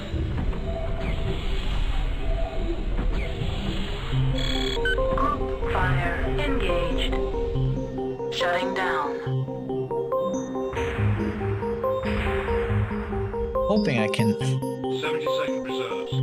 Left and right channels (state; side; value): identical; both; correlation 1.00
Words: Group fire engaged. Shutting down. Hoping I can. 70-second reserves.